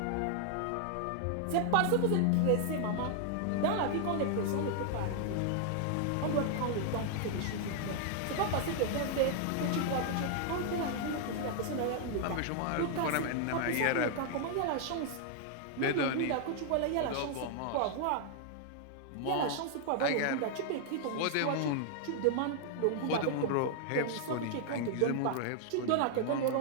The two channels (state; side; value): different; both; correlation 0.00